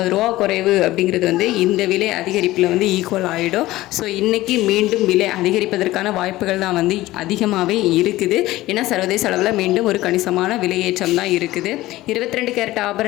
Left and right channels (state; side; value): quieter; right; 17.1 dB